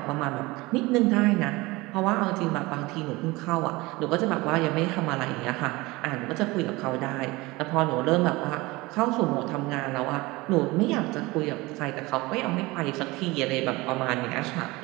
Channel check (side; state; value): left; quieter; 22.0 dB